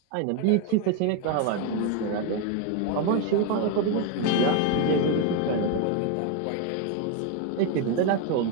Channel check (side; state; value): both; different; correlation 0.01